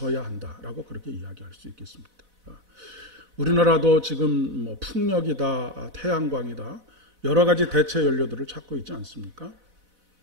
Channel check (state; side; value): late; left; 4.0 ms